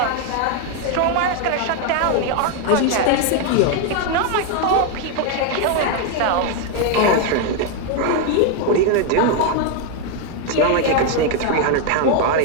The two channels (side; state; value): both; different; correlation 0.01